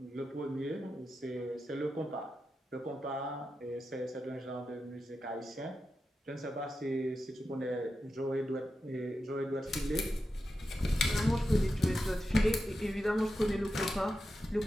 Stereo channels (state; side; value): normal; both; correlation 0.89